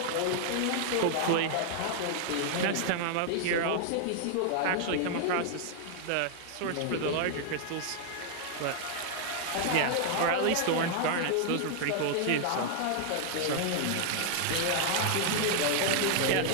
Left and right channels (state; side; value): different; both; correlation 0.00